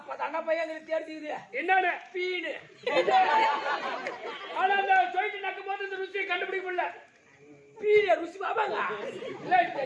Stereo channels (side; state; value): both; identical; correlation 1.00